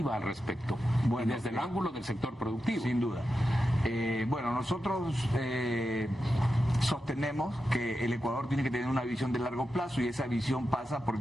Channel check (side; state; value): both; normal; correlation 0.89